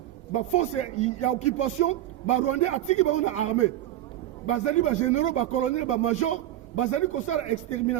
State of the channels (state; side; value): quieter; left; 13.3 dB